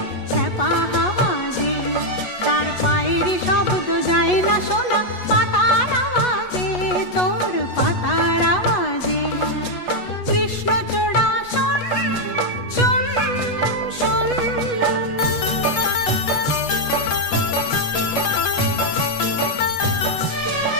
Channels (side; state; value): right; late; 8.2 ms